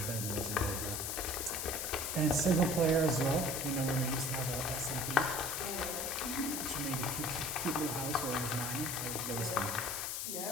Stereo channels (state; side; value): noise; left; hiss, 2 dB below the sound